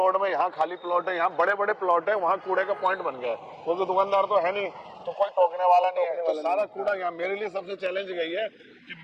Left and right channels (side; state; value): both; identical; correlation 1.00